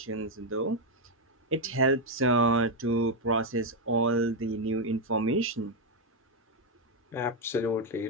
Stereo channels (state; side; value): normal; both; correlation 0.02